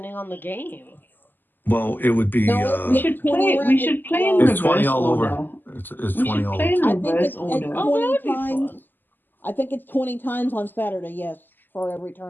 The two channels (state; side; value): late; right; 0.090 ms